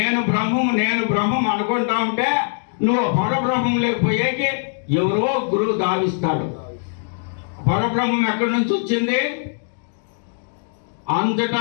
బ్రహ్మం అనుకుంటా ఉంటే నువ్వు పరబ్రహ్మం లేకపోయేకి ఎవరో గురువు దావిస్తాడు. పరబ్రహ్మం ఎక్కడి నుంచి వచ్చింది? అంతటా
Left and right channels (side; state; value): right; silent; digital silence